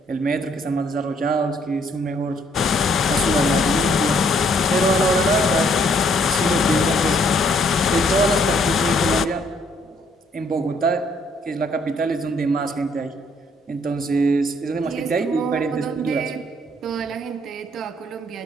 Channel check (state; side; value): normal; both; correlation 0.66